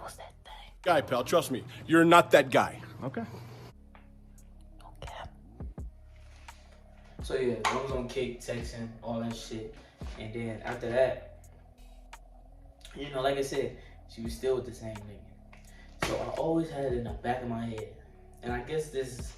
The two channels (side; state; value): both; identical; correlation 1.00